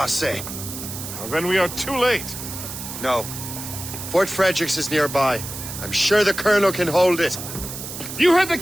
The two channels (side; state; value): right; noise; hiss, 9 dB below the sound